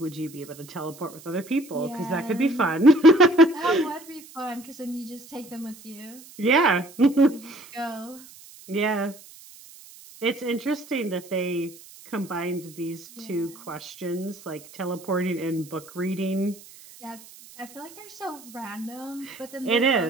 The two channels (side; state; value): right; noise; hiss, 20 dB below the sound